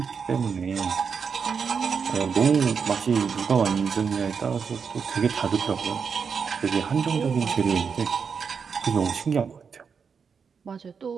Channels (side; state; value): left; quieter; 6.1 dB